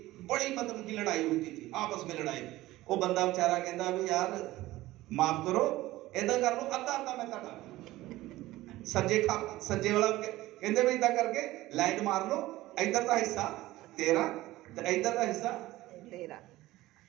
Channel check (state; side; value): quieter; left; 17.1 dB